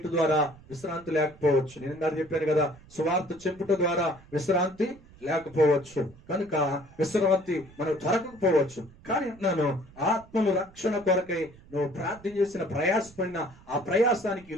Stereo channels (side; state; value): right; noise; rumble, 23 dB below the sound